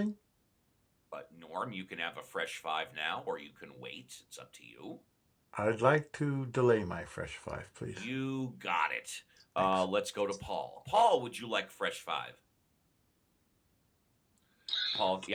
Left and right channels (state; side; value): identical; both; correlation 1.00